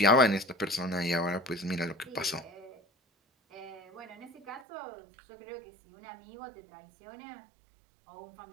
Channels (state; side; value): drops out; left; at 4.7 s